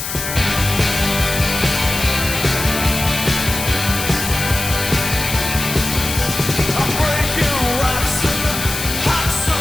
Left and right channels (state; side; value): noise; left; hiss, 5 dB below the sound